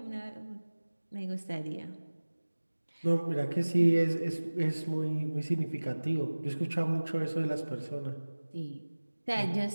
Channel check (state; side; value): inverted; both; correlation -1.00